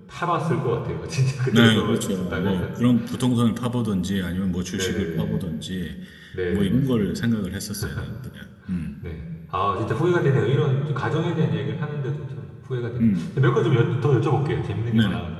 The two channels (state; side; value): identical; both; correlation 1.00